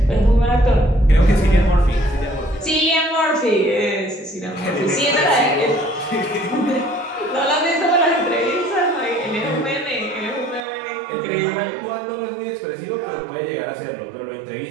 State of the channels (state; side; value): drops out; left; at 10.6 s